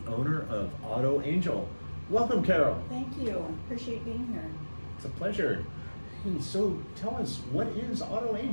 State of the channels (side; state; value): both; inverted; correlation -1.00